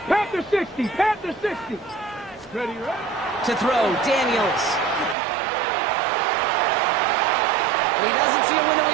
Panther 60. Panther 60. Ready, right? To throw, Daniels. He doesn't see a window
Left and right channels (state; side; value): drops out; left; at 5.2 s